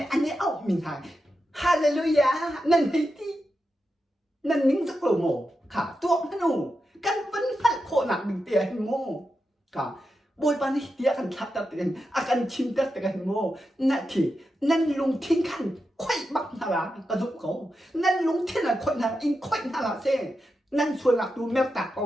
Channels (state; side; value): normal; both; correlation 0.88